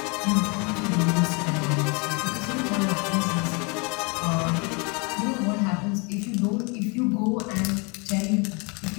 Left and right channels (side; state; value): right; quieter; 31.7 dB